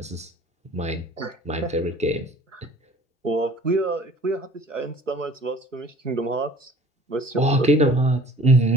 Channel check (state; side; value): normal; both; correlation 0.49